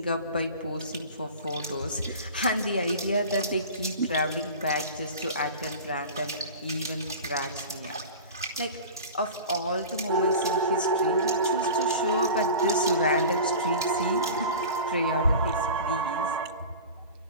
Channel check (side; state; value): both; inverted; correlation -0.35